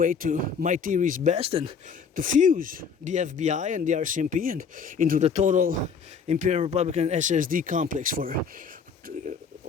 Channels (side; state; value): right; quieter; 6.0 dB